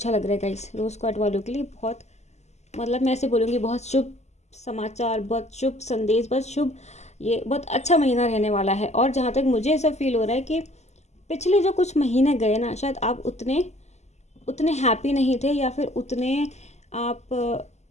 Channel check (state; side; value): late; right; 0.33 ms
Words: लग रहा है गाइस, रोज़ कार्ड वालों के लिए बहुत, मतलब मैं ऐसे बोलूँगी बहुत शुभ समाचार, बहुत शुभ संदेश, बहुत शुभ, ये बहुत अच्छा महीना रहने वाला है। और जहाँ तक मुझे ऐसा फील हो रहा है कि पिछले जो कुछ महीने गए ना, शायद आप उतने हैप्पी नहीं थे, या फिर उतने आप